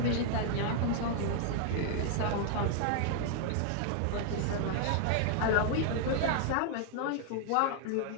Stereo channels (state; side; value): different; both; correlation 0.00